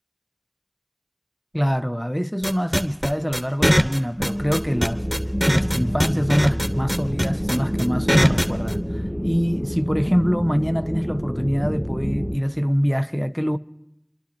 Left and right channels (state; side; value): identical; both; correlation 1.00